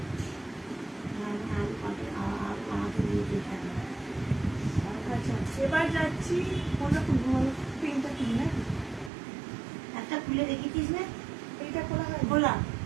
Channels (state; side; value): drops out; left; at 9.1 s